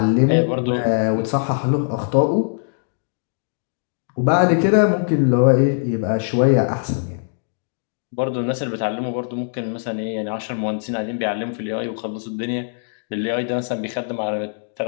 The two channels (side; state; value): right; silent; digital silence